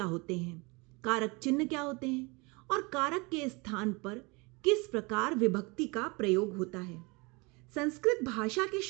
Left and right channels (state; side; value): quieter; left; 27.2 dB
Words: होते हैं, कारक चिन्ह क्या होते हैं और कारक के स्थान पर किस प्रकार विभक्ति का प्रयोग होता है। संस्कृत भाषा के